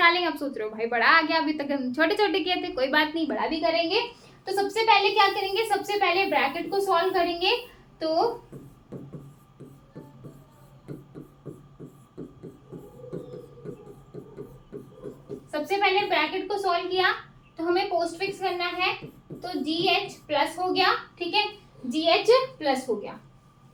आप सोच रहे हो भाई बड़ा आ गया, अभी तक हम छोटे छोटे किए थे, कोई बात नहीं, बड़ा भी करेंगे। तो सबसे पहले क्या करेंगे? सबसे पहले ब्रैकेट को सॉल्व करेंगे। तो सबसे पहले ब्रैकेट को सॉल्व किया तो हमें पोस्टफिक्स करना है, तो जी एच प्लस हो गया, ठीक है, जी एच प्लस हो गया।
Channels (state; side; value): identical; both; correlation 1.00